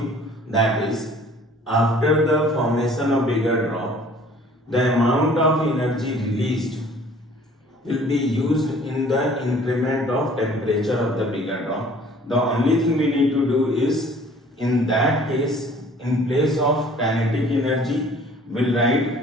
that is, after the formation of bigger drop, the amount of energy released will be used in the increment of temperature of the bigger drop. The only thing we need to do is, in that case, in place of kinetic energy, we'll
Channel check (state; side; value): normal; both; correlation 0.53